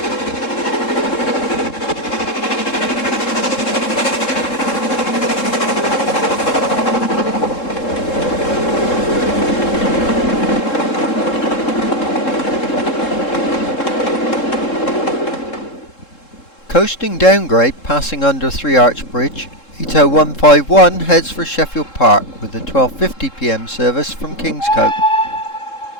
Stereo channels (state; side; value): late; right; 3.7 ms